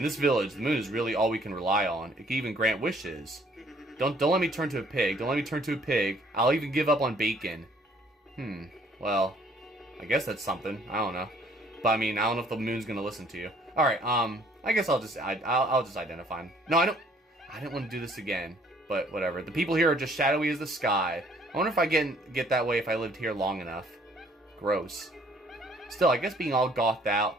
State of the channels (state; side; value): normal; both; correlation 0.61